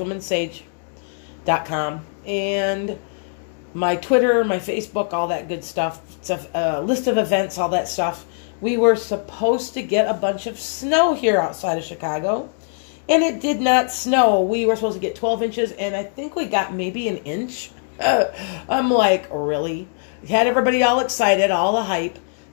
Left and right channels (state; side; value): silent; right; digital silence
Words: and my Twitter, my Facebook, all that good stuff. It's a list of events, all that stuff. We were supposed to get a bunch of snow here outside of Chicago, and it did not snow. We were supposed to get 12 inches, and I think we got maybe an inch. I'm like, really? Had everybody all excited, all the hype.